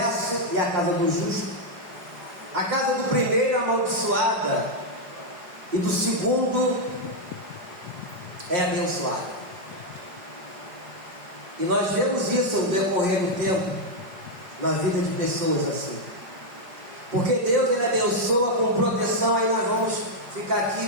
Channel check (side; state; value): left; late; 5.3 ms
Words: e a casa do justo. A casa do primeiro amaldiçoada e do segundo é abençoada. E nós vemos isso no decorrer do tempo na vida de pessoas assim. Porque Deus, Ele abençoa com proteção. Aí nós vamos ficar aqui